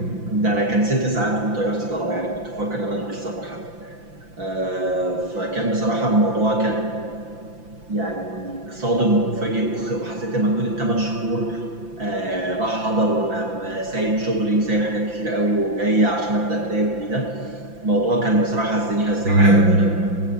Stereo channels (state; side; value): late; left; 5.9 ms